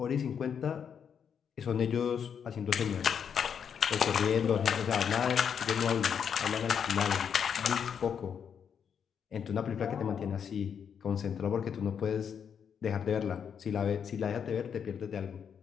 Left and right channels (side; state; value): right; quieter; 7.5 dB